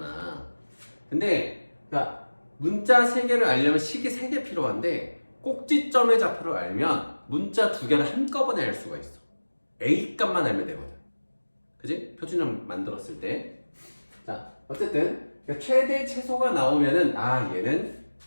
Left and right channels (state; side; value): inverted; both; correlation -1.00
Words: 근데 그러니까 문자 3개를 알려면 식이 3개 필요한데 꼭지점의 좌표를 알면 문자 2개를 한꺼번에 알 수가 있어. a 값만 알면 되거든. 그지? 표준형 만들었을 때. 자, 어쨌든 최대 최소가 나오면은 아, 얘는